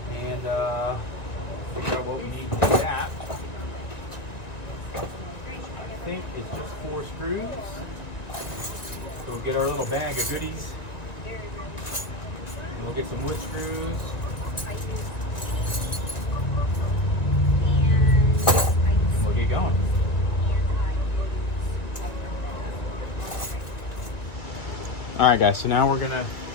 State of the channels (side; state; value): right; late; 1.9 ms